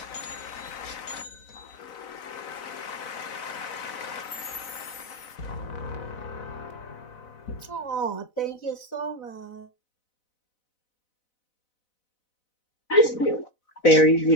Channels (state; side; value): late; right; 4.0 ms